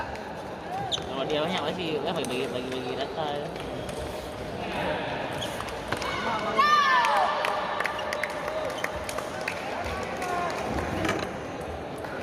Kalau dia banyak pasti kan bagi data ya.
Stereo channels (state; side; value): identical; both; correlation 1.00